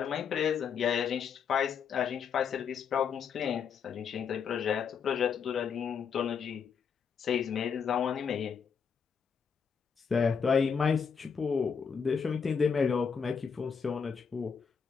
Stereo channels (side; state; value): right; quieter; 6.5 dB